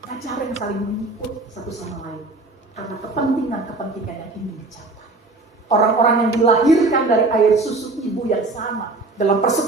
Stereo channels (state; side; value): quieter; left; 3.3 dB